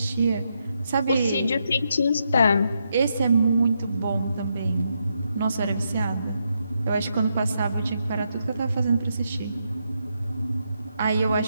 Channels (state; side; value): inverted; both; correlation -0.81